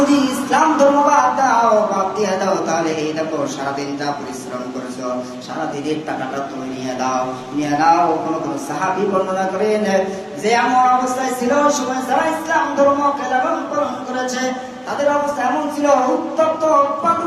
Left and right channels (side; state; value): both; identical; correlation 1.00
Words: ইসলাম ধর্ম বাদ দিয়ে দাও তাহলে এই দেখো সারাদিন যা পরিশ্রম করেছো সারাদিনের টাকাটা তুমি নিয়ে দাও। কোন সাহাবী বর্ণনা করেন যে এমন অবস্থায় ছিল সময় যারা ইসলাম ধর্মকে লালন পালন করেছে তাদের অবস্থা এমন ছিল উত্তপ্ত